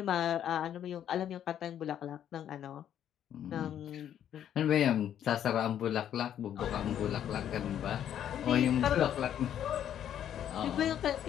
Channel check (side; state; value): right; quieter; 10.1 dB